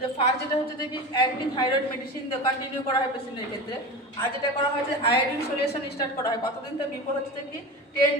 যে ফার্স্ট যেটা হচ্ছে যে কি অ্যান্টি থাইরয়েড মেডিসিন কন্টিনিউ করা হয় পেশেন্টের ক্ষেত্রে। আর যেটা করা হয় যে আয়োডিন সলিউশন স্টার্ট করা হয় কতদিন তো বিফোর হচ্ছে যে কি 10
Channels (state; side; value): normal; both; correlation 0.28